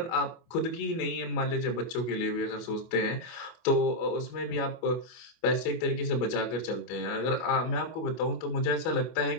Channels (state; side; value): late; right; 25 ms